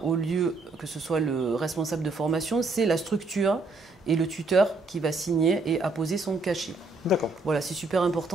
au lieu que ce soit le responsable de formation, c'est la structure et le tuteur qui va signer et apposer son cachet. D'accord. Voilà, c'est super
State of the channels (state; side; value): quieter; left; 3.5 dB